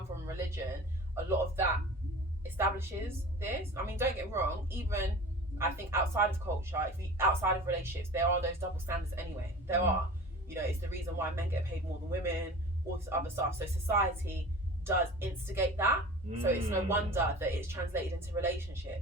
from religion, a lot of that establishes this. I mean, don't get me wrong, even I think outside of culture, outside of relationships, there are those double standards anyway. There are. It's the reason why men get paid more than women, all this other stuff. So society does instigate that. So it's no wonder that it's translated into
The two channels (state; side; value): normal; both; correlation 0.38